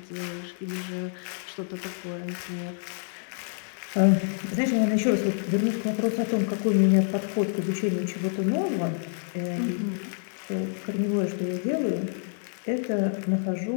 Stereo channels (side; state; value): right; silent; 60 dB below the other